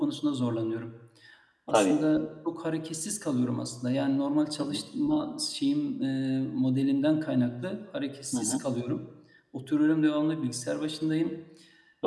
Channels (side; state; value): both; identical; correlation 1.00